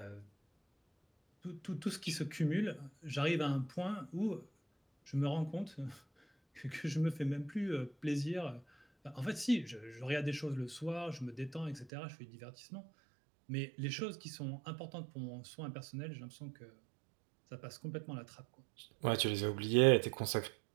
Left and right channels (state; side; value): drops out; left; at 11.9 s